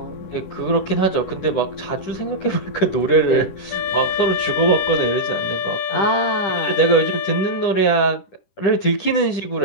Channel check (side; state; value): right; late; 10 ms